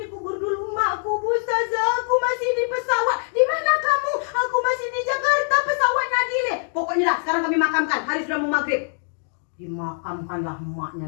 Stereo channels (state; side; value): silent; right; 62 dB below the other